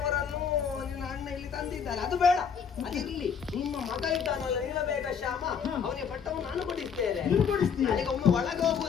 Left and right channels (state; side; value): quieter; right; 6.9 dB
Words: ನಿನ್ನ ಅಣ್ಣ ಇಲ್ಲಿ ತಂದಿದ್ದಾರೆ. ಅದು ಬೇಡ, ಅದಿರ್ಲಿ. ನಿಮ್ಮ ಮಗ ಇದ್ದಾನಲ್ಲ ನೀಲಮೇಘ ಶ್ಯಾಮ, ಅವನಿಗೆ ಪಟ್ಟವನ್ನು ನಾನು ಕೊಡಿಸ್ತೇನೆ. ನನಗೆ ಒಮ್ಮೆ ಒಳಗೆ